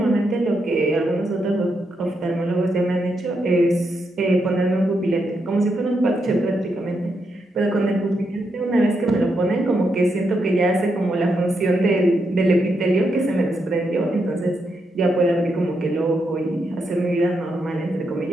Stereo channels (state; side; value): normal; both; correlation 0.82